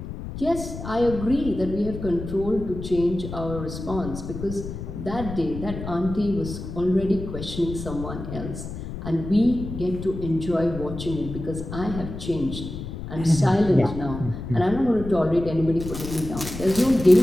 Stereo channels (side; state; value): left; noise; rumble, 9 dB below the sound